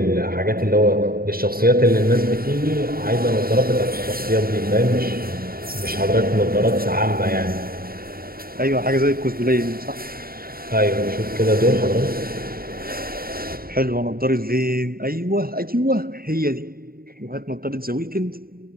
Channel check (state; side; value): late; left; 0.43 ms